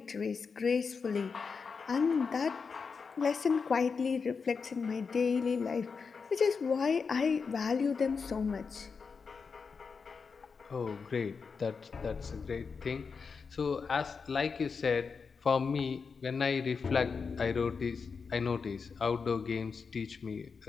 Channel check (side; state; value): right; quieter; 5.3 dB